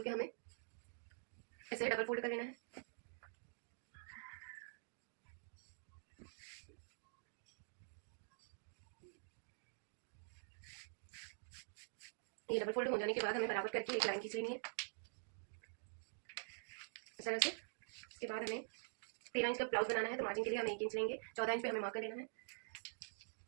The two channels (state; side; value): silent; left; digital silence